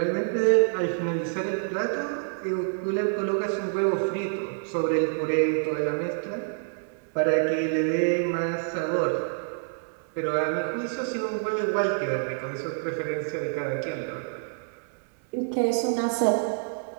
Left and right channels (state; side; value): silent; left; 60 dB below the other